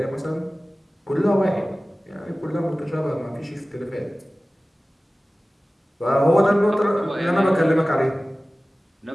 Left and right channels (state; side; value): normal; both; correlation 0.97